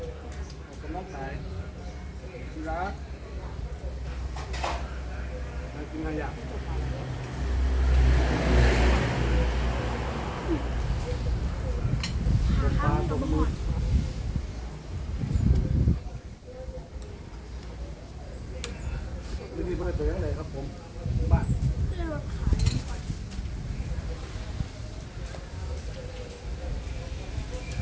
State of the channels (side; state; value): both; identical; correlation 1.00